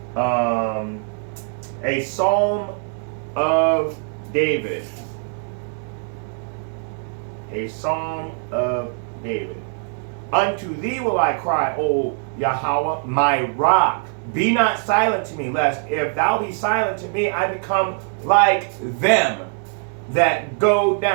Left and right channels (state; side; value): silent; left; 56 dB below the other